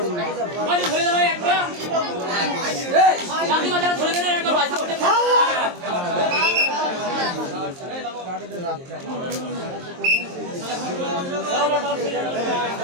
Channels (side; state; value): left; late; 23 ms